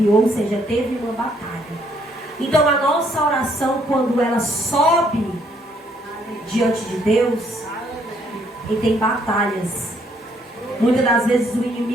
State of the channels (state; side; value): normal; both; correlation 0.68